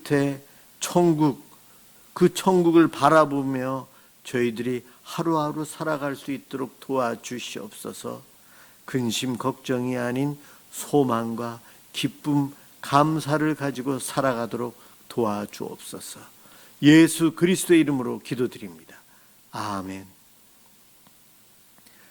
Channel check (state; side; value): identical; both; correlation 1.00